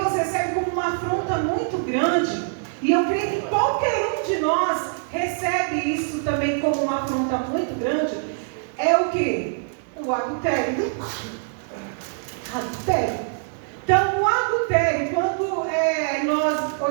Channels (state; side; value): silent; left; digital silence